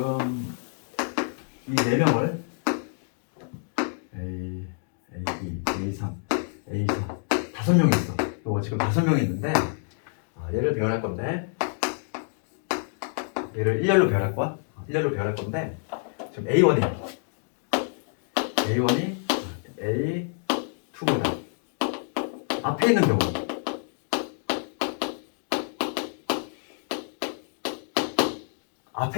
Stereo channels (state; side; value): silent; right; 59 dB below the other